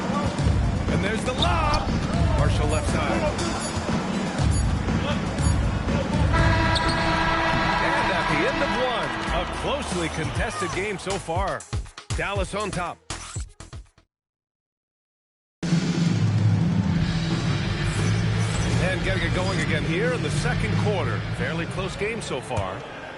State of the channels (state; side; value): identical; both; correlation 1.00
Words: And there's the lob. Marshall left side. And at the end of one, a closely contested game so far. Dallas on top. And getting it going again here in the second quarter. Fairly close game so far.